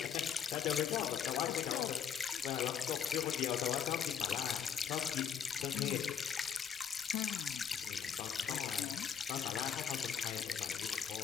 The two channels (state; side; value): quieter; right; 7.7 dB